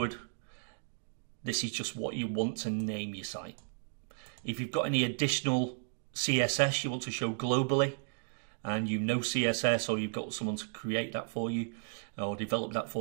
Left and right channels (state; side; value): silent; left; digital silence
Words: This is just what you want to name your site. If you've got any additional CSS you want to show globally and you know CSS or you've got someone to create that for you or develop that